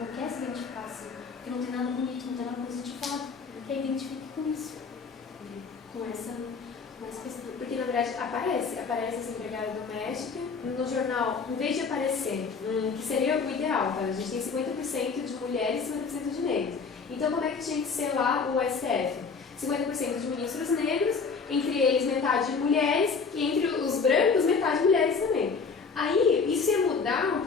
quer se identificar assim, porque não tem nada bonito, não tem nada positivado, ela quer identificar com isso, com essa questão. Porque na verdade aparece essa empregada doméstica no jornal, em vez de aparecer, que seria o ideal, tá? A gente tem 50% de mulheres e 50% de negros. Então como é que tinha que ser lá o STF? 50% de ministros negros, entre eles metade de mulheres, e entre os brancos metade de mulheres também. Aí isso ia mudar um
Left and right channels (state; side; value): quieter; right; 5.1 dB